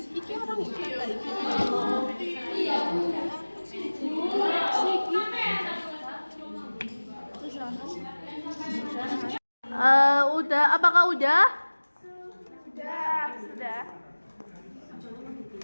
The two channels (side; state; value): both; inverted; correlation -1.00